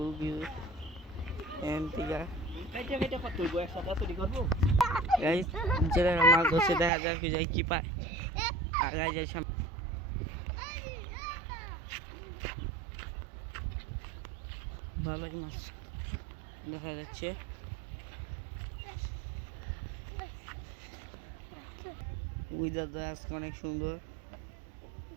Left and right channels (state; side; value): drops out; left; at 6.9 s